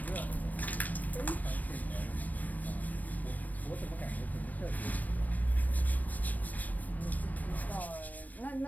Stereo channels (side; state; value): right; late; 0.080 ms